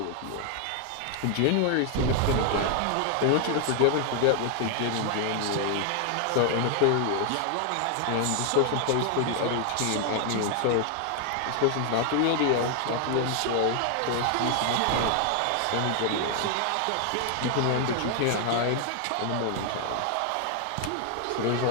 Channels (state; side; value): different; both; correlation 0.00